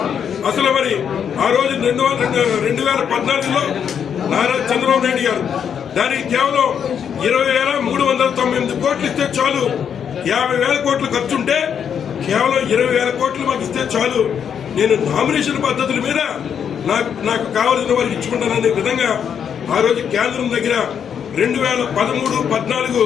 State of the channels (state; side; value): quieter; right; 7.9 dB